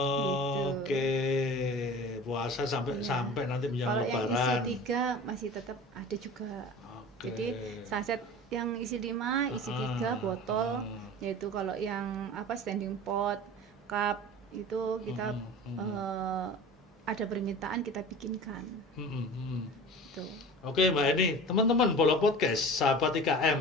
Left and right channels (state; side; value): normal; both; correlation 0.37